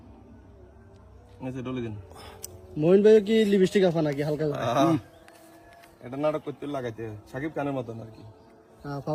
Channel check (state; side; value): identical; both; correlation 1.00